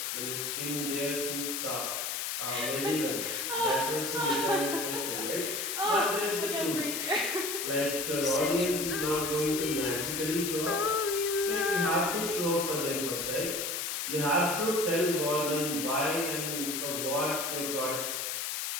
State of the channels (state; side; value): noise; left; hiss, 2 dB below the sound